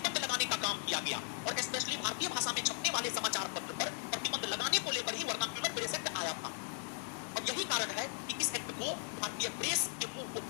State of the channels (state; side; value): silent; right; 53 dB below the other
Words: लगाने का काम किया गया। और स्पेशली भारतीय भाषा में छपने वाले समाचार पत्र पर प्रतिबंध लगाने को लेकर ही वर्नाक्यूलर प्रेस एक्ट आया था। और यही कारण है कि इस एक्ट को भारतीय प्रेस के मुंह को